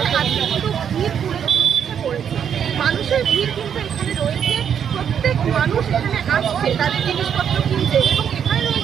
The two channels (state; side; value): quieter; left; 8.2 dB